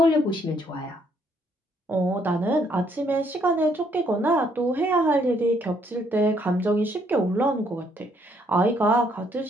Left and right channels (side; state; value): both; normal; correlation 0.69